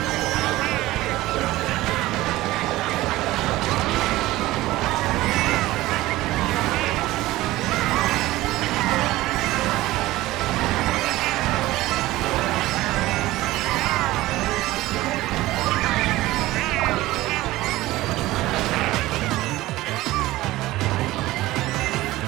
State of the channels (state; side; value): quieter; left; 17.5 dB